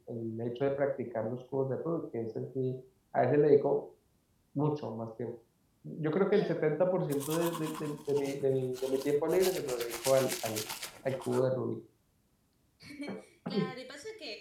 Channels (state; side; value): identical; both; correlation 1.00